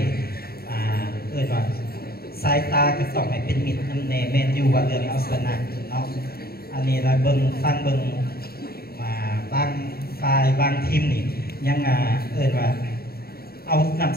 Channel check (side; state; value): right; late; 0.45 ms